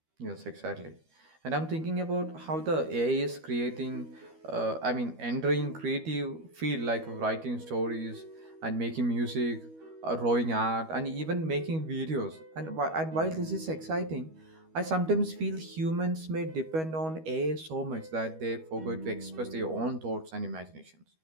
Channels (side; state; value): left; late; 13 ms